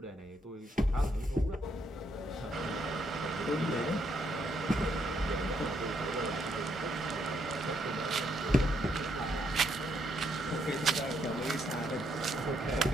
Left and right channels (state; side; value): normal; both; correlation 0.74